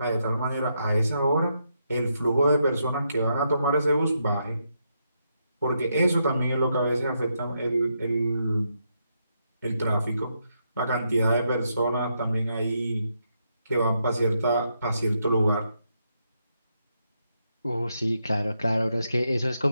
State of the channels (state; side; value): inverted; both; correlation -0.80